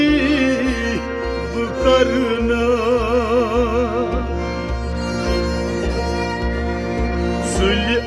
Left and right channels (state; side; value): identical; both; correlation 1.00